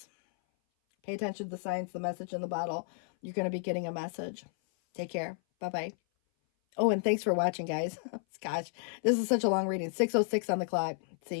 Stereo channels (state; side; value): silent; right; 56 dB below the other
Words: Pay attention to the signs, the message in the bottle. You're going to be getting a message. Take care. Bye-bye. Oh, and thanks for watching, guys. Gosh, this is such a long reading. 6:06 on the clock.